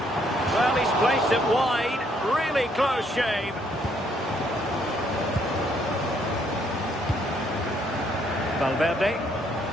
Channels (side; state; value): both; normal; correlation 0.69